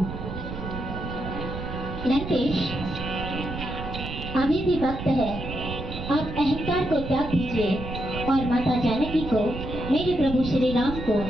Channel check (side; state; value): right; noise; rumble, 8 dB below the sound